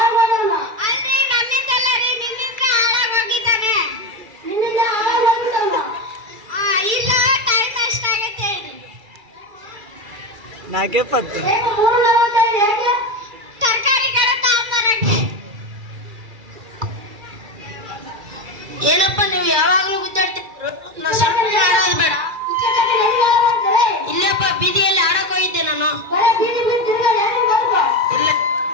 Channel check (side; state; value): left; late; 2.3 ms